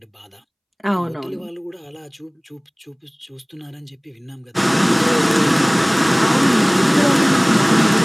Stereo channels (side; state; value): both; identical; correlation 1.00